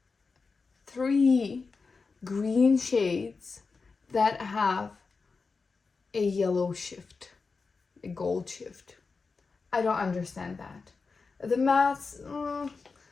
3 green shades that have a yellow shift, a gold shift? I don't understand that. The mattes,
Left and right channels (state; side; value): quieter; right; 4.5 dB